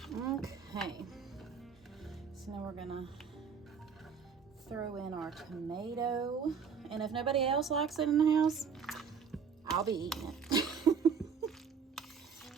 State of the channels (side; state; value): left; quieter; 6.3 dB